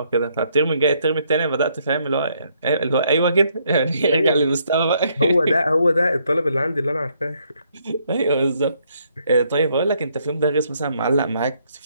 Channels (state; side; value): inverted; both; correlation -0.71